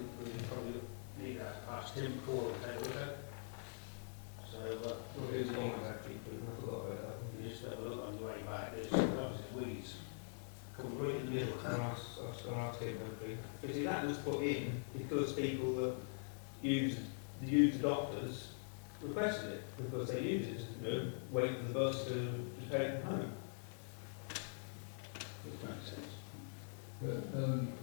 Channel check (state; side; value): silent; right; digital silence